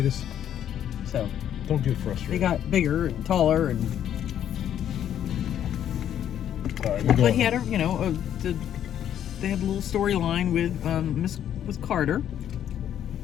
So... Don't get frustrated. They got bigger and taller and... All right, but he had they had a little storyline with Carter.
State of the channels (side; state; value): right; quieter; 10.2 dB